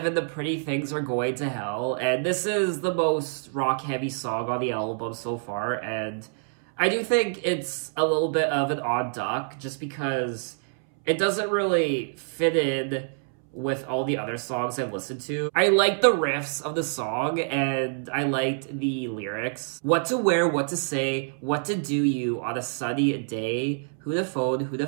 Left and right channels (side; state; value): left; silent; 61 dB below the other